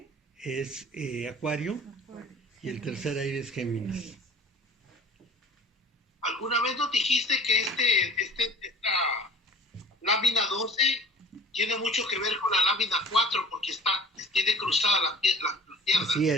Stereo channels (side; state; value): both; normal; correlation 0.45